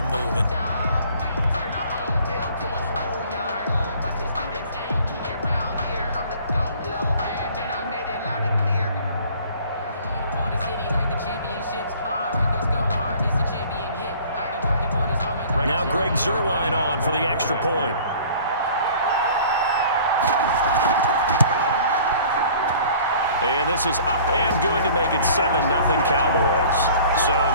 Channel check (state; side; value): inverted; both; correlation -0.50